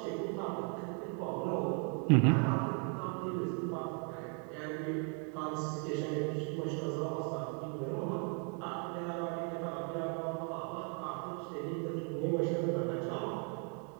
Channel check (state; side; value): quieter; left; 37.0 dB